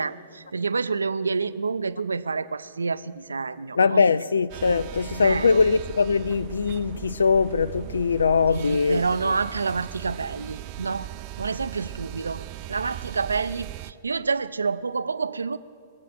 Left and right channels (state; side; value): inverted; both; correlation -0.82